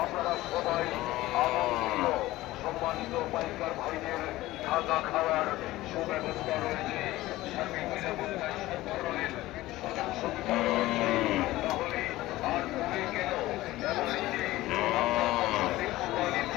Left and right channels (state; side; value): quieter; right; 17.2 dB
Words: সম্মানিত পাইকার ভাইদের থাকা খাওয়ার সুব্যবস্থা রয়েছে।